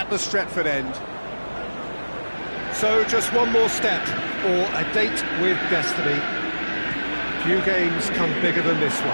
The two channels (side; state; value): both; inverted; correlation -1.00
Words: the Stretford end. So just one more step for a date with destiny. Few games come bigger than this